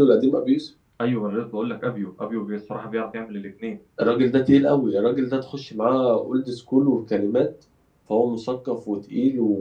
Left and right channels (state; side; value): identical; both; correlation 1.00